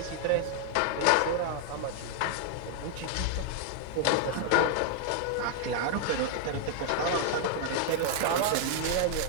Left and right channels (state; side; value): different; both; correlation 0.00